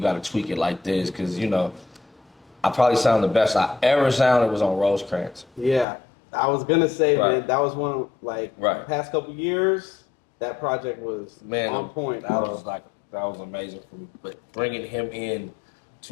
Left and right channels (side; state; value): right; drops out; at 5.9 s